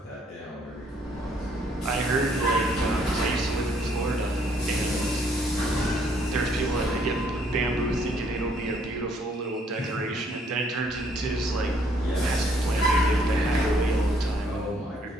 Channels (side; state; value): both; normal; correlation 0.66